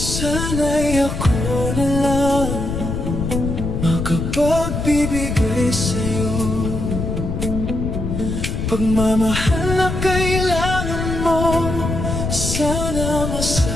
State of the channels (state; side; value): noise; left; rumble, 3 dB below the sound